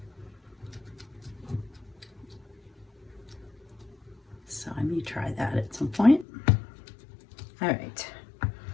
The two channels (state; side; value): drops out; right; at 6.2 s